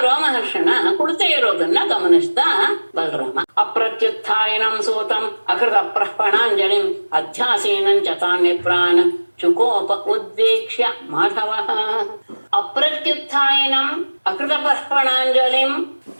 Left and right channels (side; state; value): both; inverted; correlation -1.00